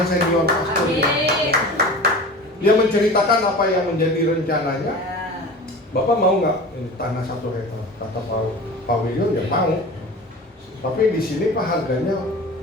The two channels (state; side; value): normal; both; correlation 0.36